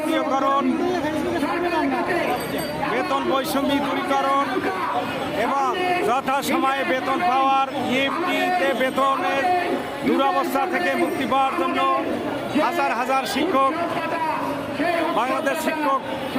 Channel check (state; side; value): identical; both; correlation 1.00